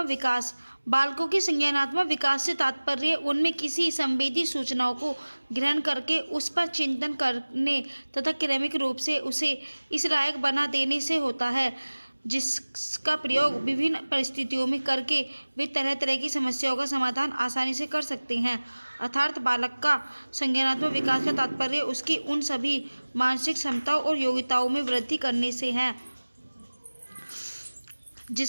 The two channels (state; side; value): inverted; both; correlation -1.00